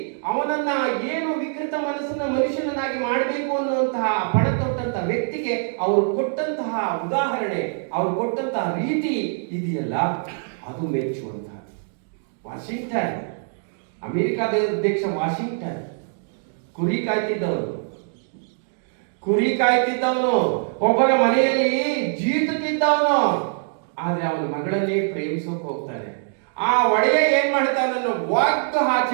ಅವನನ್ನ ಏನು ವಿಕೃತ ಮನಸ್ಸನ್ನ ಮನುಷ್ಯನನ್ನಾಗಿ ಮಾಡಬೇಕು ಅನ್ನುವಂತಹ ಪಣ ತೊಟ್ಟಂತಹ ವ್ಯಕ್ತಿಗೆ ಅವರು ಕೊಟ್ಟಂತಹ ಉದಾಹರಣೆ, ಅವರು ಕೊಟ್ಟಂತಹ ರೀತಿ ಇದೆಯಲ್ಲ, ಅದು ಮೆಚ್ಚುವಂತಹ. ವಾಷಿಂಗ್ಟನ್, ಅಮೆರಿಕಾದ ಅಧ್ಯಕ್ಷ ವಾಷಿಂಗ್ಟನ್, ಕುರಿ ಕಾಯ್ತಿದ್ದವನು, ಒಬ್ಬರ ಮನೆಯಲ್ಲಿ ಜೀತಕ್ಕಿದ್ದವನು. ಆದ್ರೆ ಅವನ ಮಗಳನ್ನೇ ಪ್ರೇಮಿಸೋಕೆ ಹೋಗ್ತಾನೆ. ಆ ಒಡೆಯ ಏನ್ ಮಾಡ್ತಾನನ್ನು ಒದ್ದು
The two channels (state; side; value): silent; left; digital silence